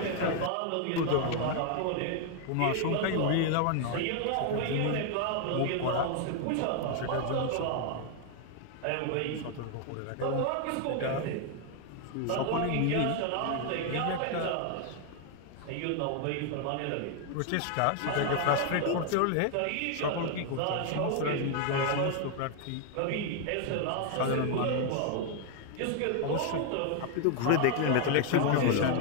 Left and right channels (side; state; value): both; different; correlation 0.00